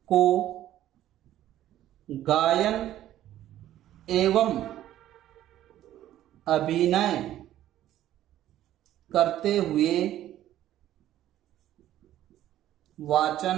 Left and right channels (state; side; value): quieter; left; 12.9 dB